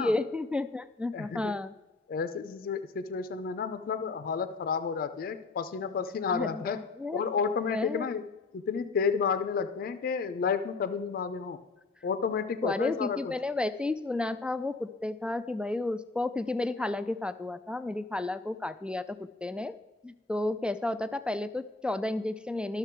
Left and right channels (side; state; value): right; quieter; 3.7 dB